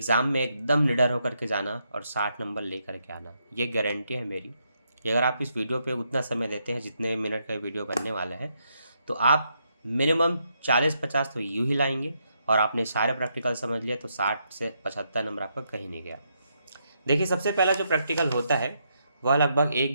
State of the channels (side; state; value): both; inverted; correlation -0.78